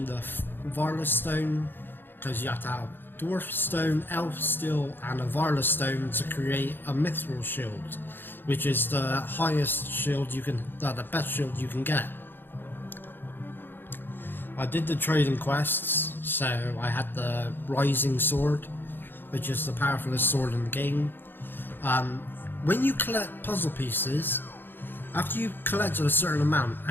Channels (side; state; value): right; late; 0.098 ms